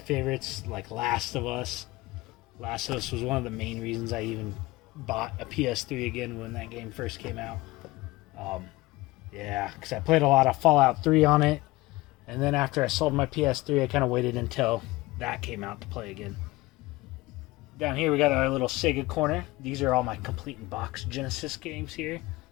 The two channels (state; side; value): quieter; right; 20.3 dB